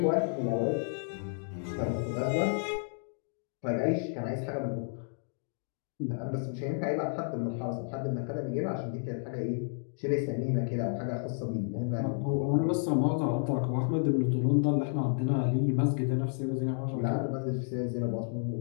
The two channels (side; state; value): right; silent; digital silence